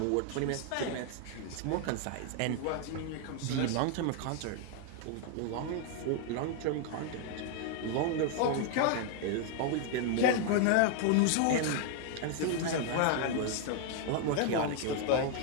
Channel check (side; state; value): both; different; correlation 0.00